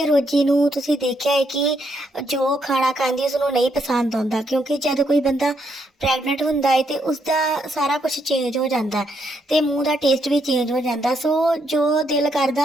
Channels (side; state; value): both; normal; correlation 0.76